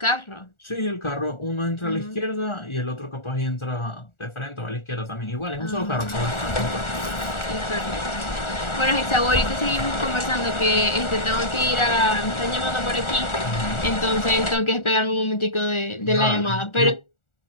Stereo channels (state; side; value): late; right; 1.4 ms